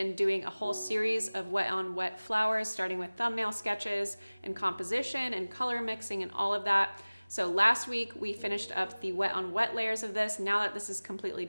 doing a whole series of wet on wet flowers, starting with thumbnail sketches and composition and color mixing and all of that. So last week we finished up the wet on wet layers of this. Now that this is completely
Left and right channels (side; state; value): both; inverted; correlation -1.00